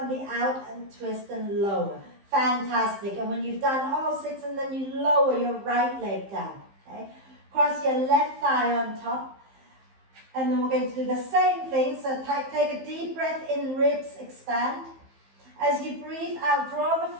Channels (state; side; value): late; left; 15 ms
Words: the out and twist and lower. Fantastic. And when you've done all 6 and then you lower your right leg down. Okay? Cross your left thigh on top. And then we're going to do the same thing. So take a deep breath in, ribs expand. As you breathe out, draw the